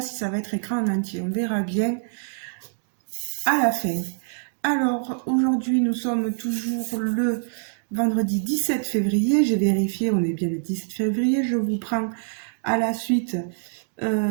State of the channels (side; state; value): left; silent; digital silence